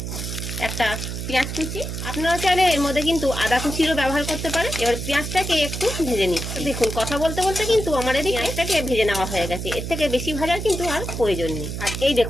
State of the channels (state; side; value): noise; right; hum, 5 dB below the sound